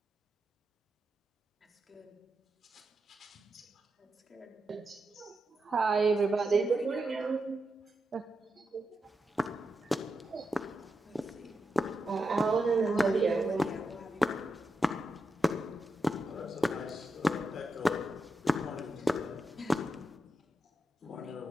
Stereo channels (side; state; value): both; normal; correlation 0.87